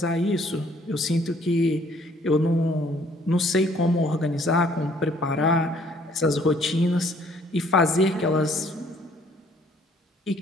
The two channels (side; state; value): both; normal; correlation 0.61